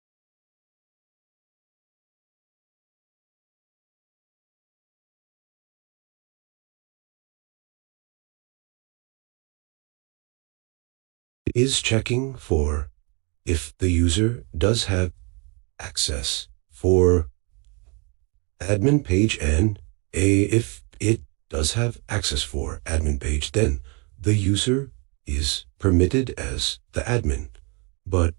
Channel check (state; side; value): quieter; left; 32.4 dB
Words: It is checking for if the user does have access for admin page and if it does have access for admin page, then the user is permitted as the admin. But